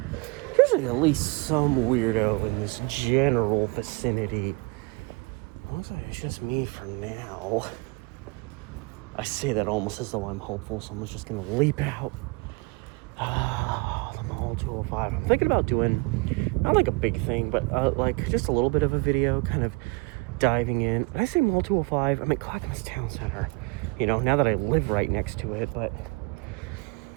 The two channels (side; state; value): left; quieter; 26.4 dB